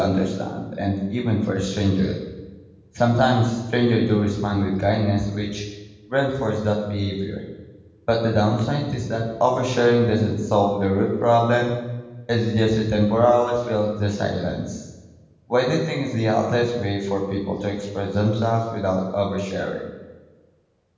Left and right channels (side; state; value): both; identical; correlation 1.00